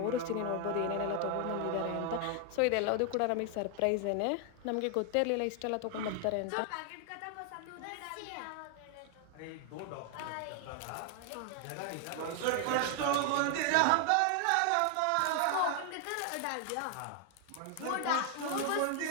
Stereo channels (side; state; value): both; different; correlation 0.00